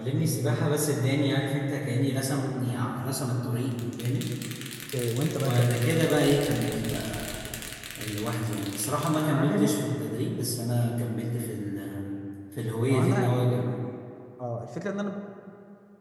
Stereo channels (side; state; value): both; identical; correlation 1.00